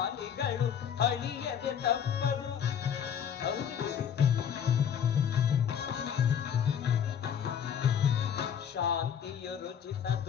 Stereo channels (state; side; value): quieter; right; 8.4 dB